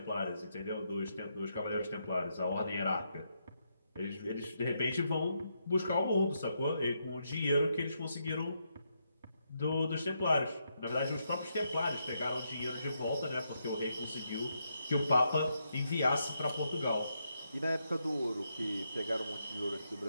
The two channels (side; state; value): both; inverted; correlation -0.80